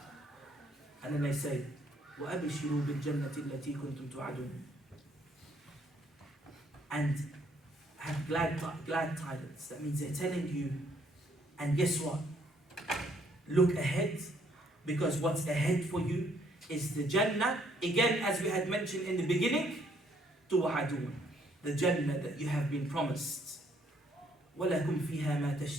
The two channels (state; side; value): normal; both; correlation 0.67